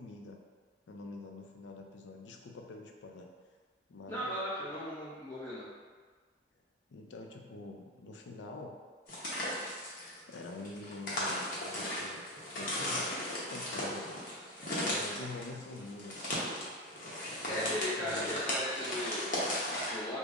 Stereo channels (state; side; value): normal; both; correlation 0.16